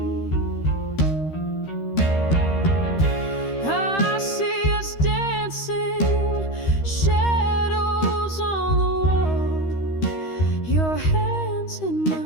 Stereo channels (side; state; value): right; late; 13 ms